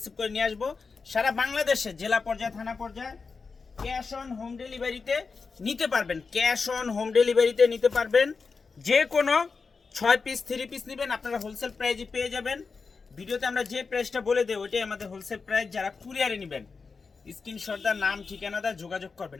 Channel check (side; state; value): right; quieter; 4.8 dB